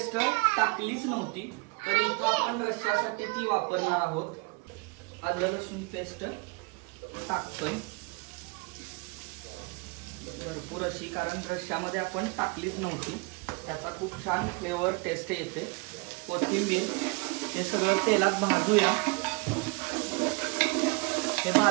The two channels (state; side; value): quieter; left; 28.8 dB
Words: टाकलीच नव्हती तर इथं आपण रश्श्यासाठी ती वापरणार आहोत. आलं लसूण पेस्ट टाकतोय भरपूर अशी, कारण रश्श्यामध्ये आपण टाकलीच नव्हती. त्याचा खूप छान फ्लेवर टेस्ट येते. कोथिंबीर हे सगळं तेलात भाजूया. हे